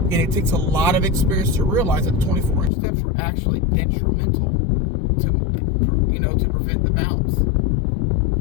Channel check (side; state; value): right; drops out; at 2.7 s